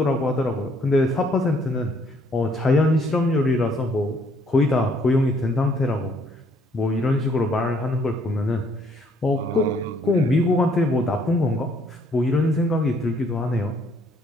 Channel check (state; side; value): normal; both; correlation 0.65